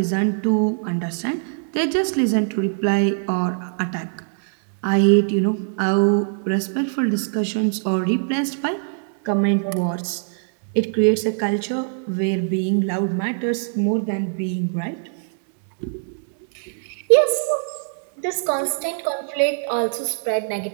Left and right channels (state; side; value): silent; left; digital silence